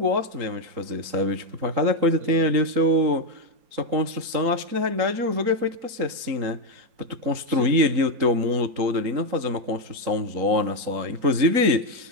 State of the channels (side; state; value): left; late; 3.9 ms